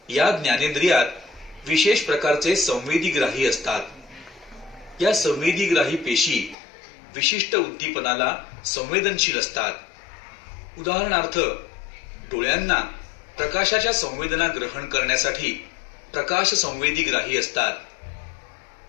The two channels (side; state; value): right; drops out; at 6.6 s